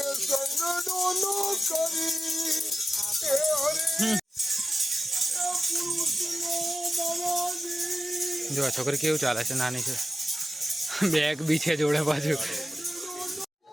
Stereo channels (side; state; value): both; normal; correlation 0.94